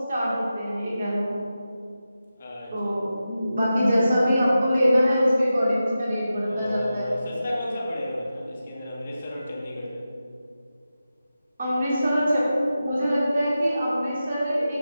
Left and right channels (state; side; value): inverted; both; correlation -0.92